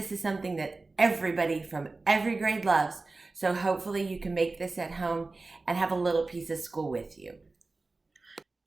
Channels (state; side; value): quieter; left; 3.5 dB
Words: is something that everybody from every grade loves. So hopefully you can make this at home and have a little piece of school with you.